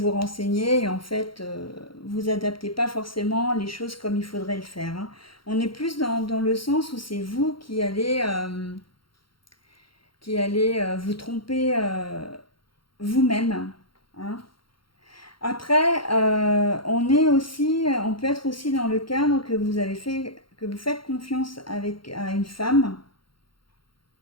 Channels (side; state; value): right; late; 0.73 ms